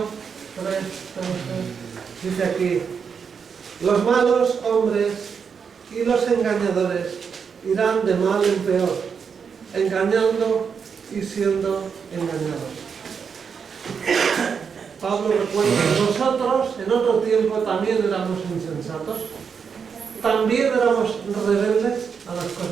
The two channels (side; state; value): left; quieter; 6.3 dB